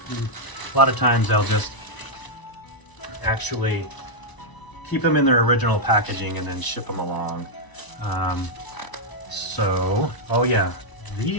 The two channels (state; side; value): late; right; 1.0 ms